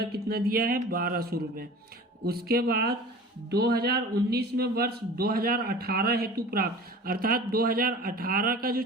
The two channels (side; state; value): both; normal; correlation 0.40